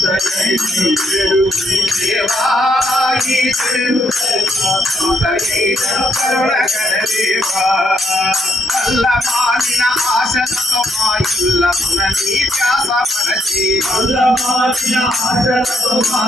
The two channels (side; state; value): both; normal; correlation 0.75